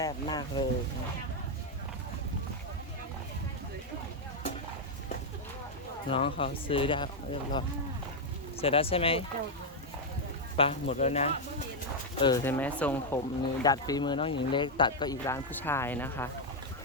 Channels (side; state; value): both; normal; correlation 0.00